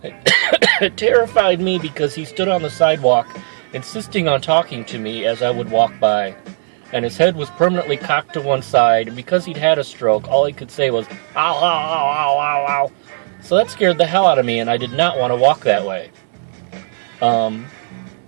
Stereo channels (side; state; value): left; silent; 68 dB below the other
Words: It terrified me because he stood on the sidewalk, insisting on talking to me as I would walk by, and his head was permanently cocked to one side. And because he'd had a stroke, all he could say was "ow, ow, ow, ow, ow, ow." So that scared the hell out of me, and I did not want to walk that way.